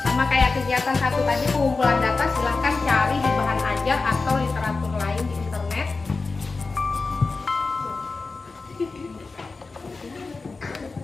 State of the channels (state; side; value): quieter; right; 4.0 dB